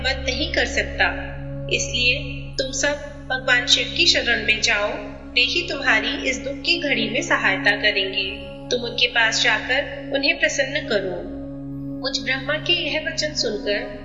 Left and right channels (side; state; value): both; identical; correlation 1.00